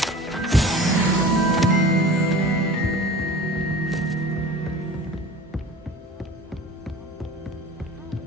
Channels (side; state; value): both; normal; correlation 0.39